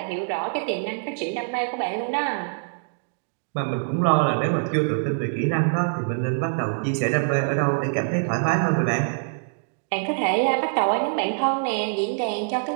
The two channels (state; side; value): silent; left; digital silence